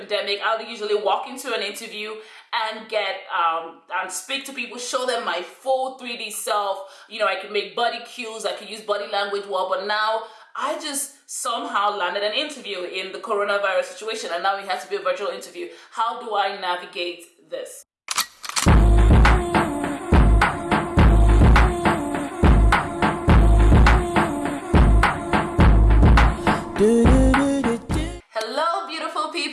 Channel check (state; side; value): identical; both; correlation 1.00